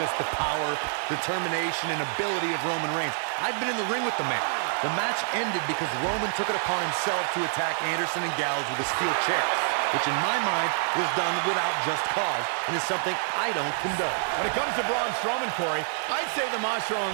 the power, determination, and ability of Roman Reigns. I've been in the ring with the man. The match ended because Roman took it upon himself to attack Anderson and Gallows with a steel chair, which in my mind was done without just cause and is something I don't condone. When it comes to Braun Strowman, Corey, I'd say the Monster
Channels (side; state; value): left; silent; digital silence